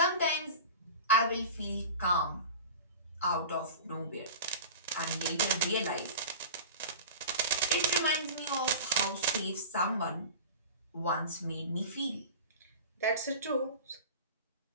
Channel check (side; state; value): both; inverted; correlation -0.36